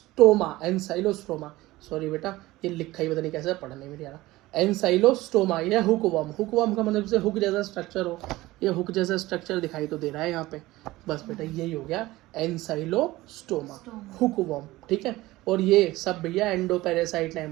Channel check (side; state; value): left; quieter; 18.4 dB